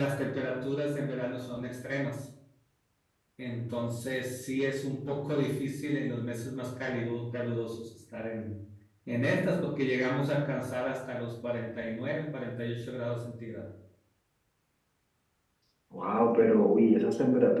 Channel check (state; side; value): identical; both; correlation 1.00